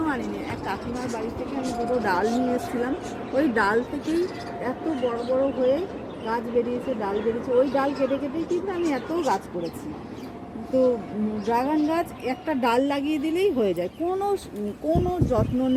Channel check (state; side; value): identical; both; correlation 1.00